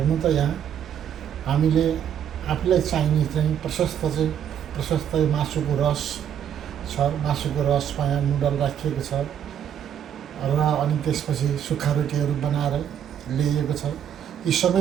त यहाँ हामीले आफूलाई चाहिने चाहिँ प्रशस्त मासुको रस छ, मासुको रसमा यहाँ नुडल राखिएको छ र अनि त्यसपछि सुक्खा रोटीहरू बनाएर ल्याइएको छ। यी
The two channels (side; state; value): left; quieter; 9.3 dB